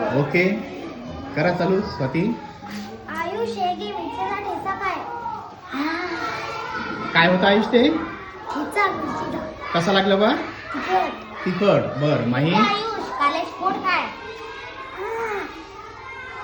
ओके, करा चालू. स्वाती, आयुष एक मिरचीचा ठेचा काय? काय होतं आयुष ते? ठेचा मिरचीचा. कसा लागला बा? तिखट. तिखट. बर माही, आयुष काले स्फोट काय?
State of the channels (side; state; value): both; identical; correlation 1.00